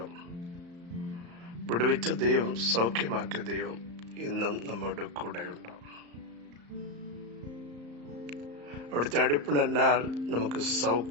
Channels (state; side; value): late; left; 34 ms